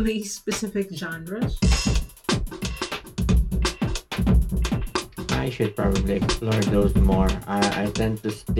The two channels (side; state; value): both; identical; correlation 1.00